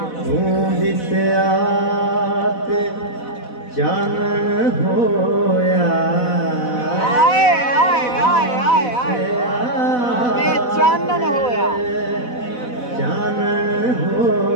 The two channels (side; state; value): right; late; 4.0 ms